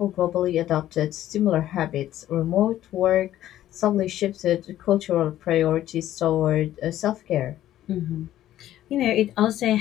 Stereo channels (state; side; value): quieter; right; 13.0 dB